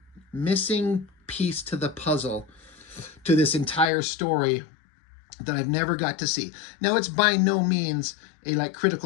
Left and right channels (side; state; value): right; drops out; at 3.9 s